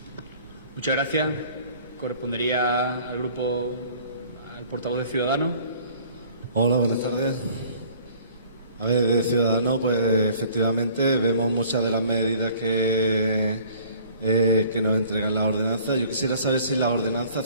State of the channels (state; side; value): inverted; both; correlation -0.53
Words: Muchas gracias. Correspondería al grupo, al portavoz de Ciudadanos. Hola, buenas tardes. A ver, de Ciudadanos, pues efectivamente vemos muchas de las medidas que nos entregan las ordenanzas. Yo quisiera saber si las ordenanzas